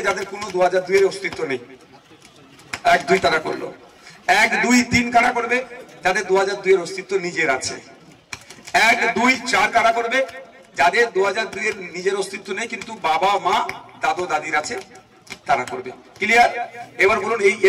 যাদের কোনো 2002 অস্তিত্ব নেই, 1, 2 তারা করলো। 1, 2, 3 কারা করবে? যাদের 2002 অস্তিত্ব নিজের আছে। 1, 2, 4 কারা করবে? যাদের 2002 নিজের অস্তিত্ব নেই কিন্তু বাবা, মা, দাদু, দাদির আছে, তারা করবে। ক্লিয়ার? এবার বলুন, এই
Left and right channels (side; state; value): both; identical; correlation 1.00